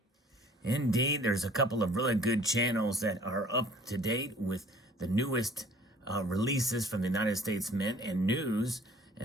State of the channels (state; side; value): normal; both; correlation 0.53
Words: Indeed, there's a couple of really good channels that are up to date with the newest releases from the United States Mint and news,